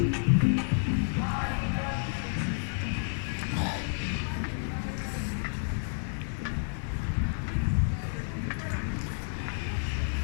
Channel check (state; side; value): silent; right; digital silence